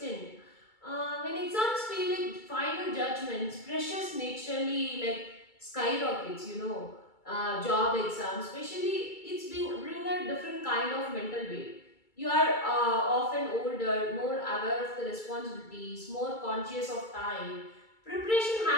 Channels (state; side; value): late; right; 2.3 ms